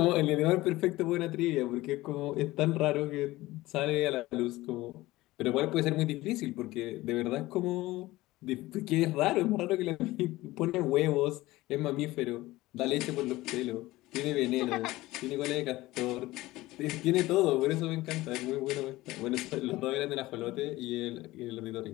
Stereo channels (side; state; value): right; quieter; 18.3 dB